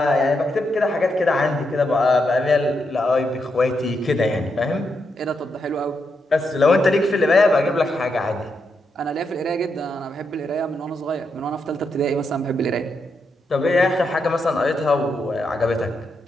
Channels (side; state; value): both; normal; correlation 0.82